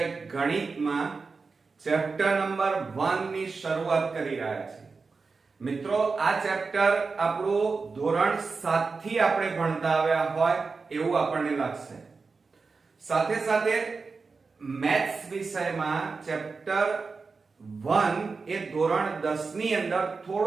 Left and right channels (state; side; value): quieter; left; 4.5 dB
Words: ગણિતમાં ચેપ્ટર નંબર 1 ની શરૂઆત કરી રહ્યા છીએ. મિત્રો, આ ચેપ્ટર આપણું ધોરણ 7 થી આપણે ભણતા આવ્યા હોય એવું આપણને લાગશે. સાથે સાથે મેથ્સ વિષયમાં ચેપ્ટર 1 એ ધોરણ 10 ની અંદર